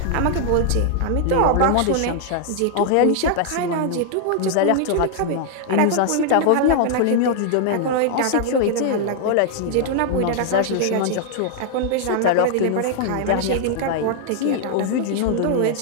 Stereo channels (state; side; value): different; both; correlation 0.00